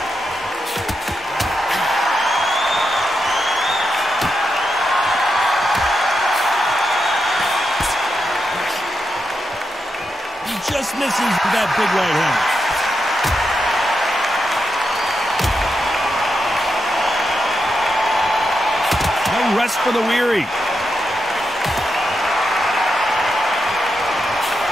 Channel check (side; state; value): both; normal; correlation 0.85